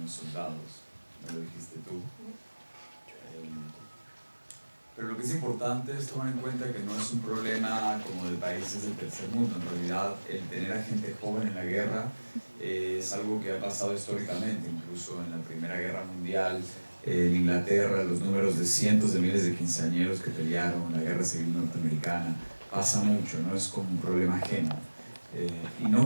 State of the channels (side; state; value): both; inverted; correlation -1.00